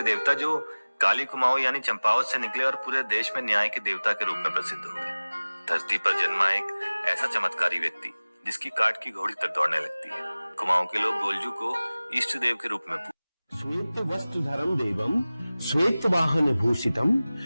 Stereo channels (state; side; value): inverted; both; correlation -0.99